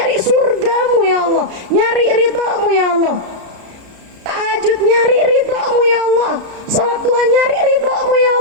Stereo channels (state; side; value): late; left; 33 ms